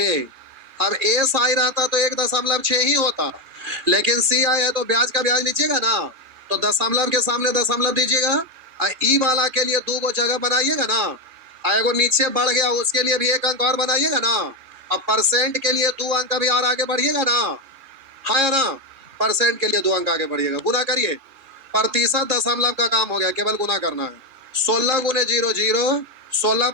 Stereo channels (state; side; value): late; left; 3.7 ms